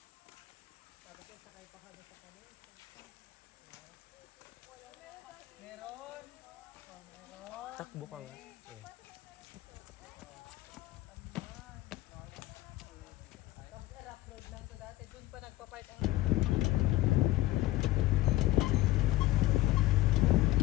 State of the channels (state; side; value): quieter; right; 16.8 dB